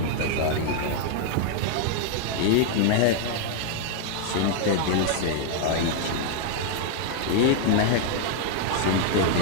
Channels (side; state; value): both; different; correlation 0.00